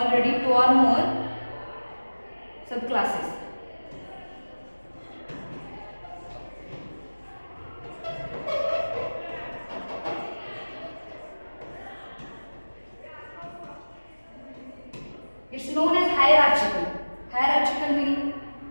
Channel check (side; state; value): both; inverted; correlation -1.00